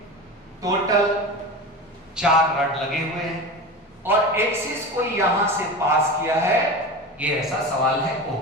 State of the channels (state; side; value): normal; both; correlation 0.28